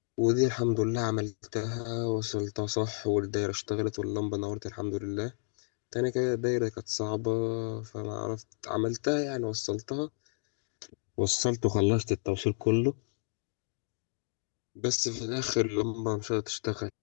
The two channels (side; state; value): right; silent; 57 dB below the other